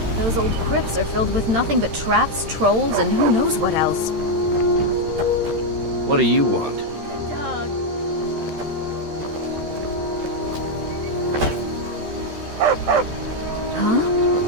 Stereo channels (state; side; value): late; left; 13 ms